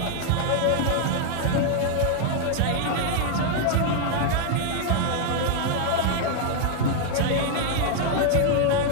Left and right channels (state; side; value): different; both; correlation 0.00